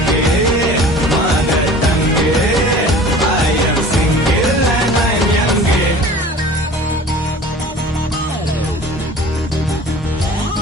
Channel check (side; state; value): both; normal; correlation 0.43